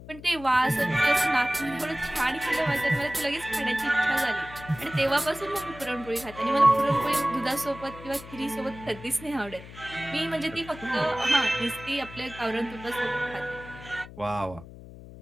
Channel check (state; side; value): noise; left; hum, 16 dB below the sound